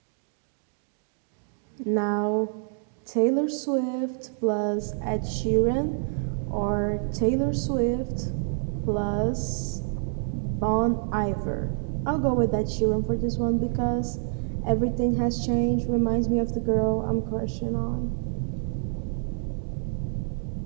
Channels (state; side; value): silent; left; digital silence